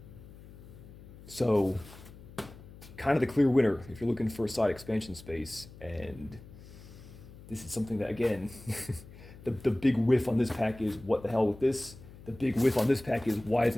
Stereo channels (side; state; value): left; noise; hum, 18 dB below the sound